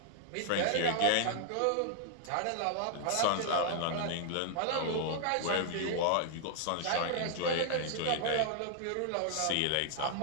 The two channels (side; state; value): both; different; correlation 0.00